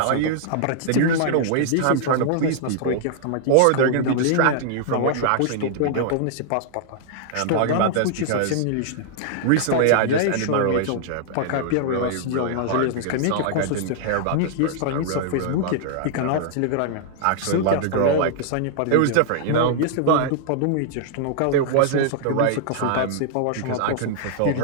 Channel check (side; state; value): both; different; correlation -0.01